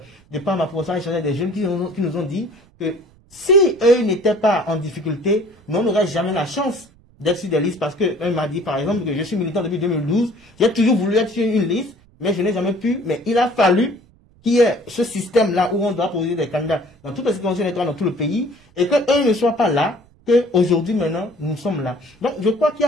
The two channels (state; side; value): noise; right; rumble, 30 dB below the sound